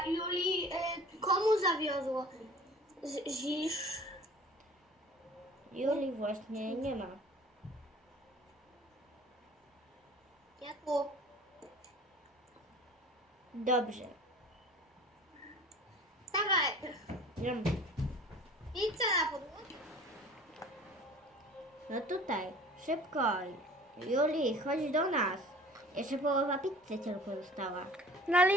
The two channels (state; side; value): normal; both; correlation 0.45